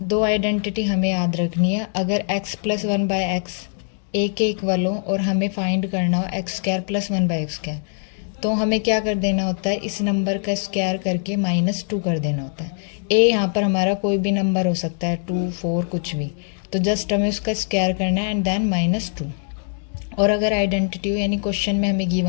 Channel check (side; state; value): right; silent; digital silence